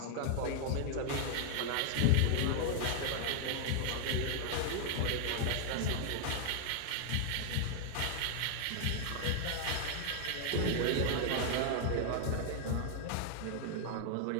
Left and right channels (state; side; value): different; both; correlation 0.00